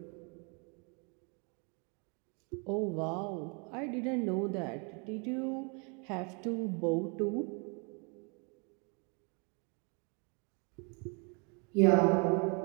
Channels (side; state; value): left; quieter; 34.6 dB